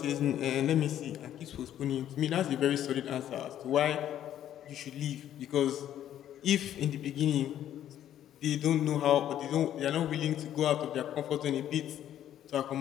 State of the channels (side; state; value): right; quieter; 11.2 dB